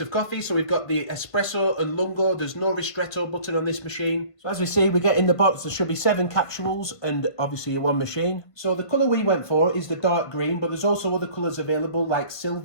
of coffee, so we've got the Espresso and Lungo. There's no ristretto button on this machine. So as we see, we get in the box, there should be 7 capsules and obviously one machine. So the colour we went for is the dark green, but there's also other colours available like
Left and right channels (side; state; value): right; late; 1.5 ms